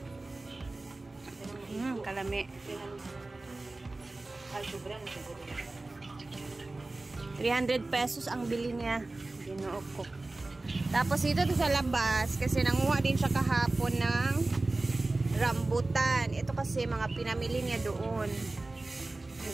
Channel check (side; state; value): left; quieter; 3.1 dB